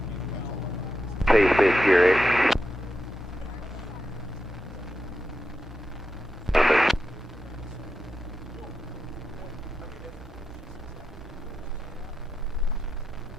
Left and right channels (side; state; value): both; normal; correlation 0.88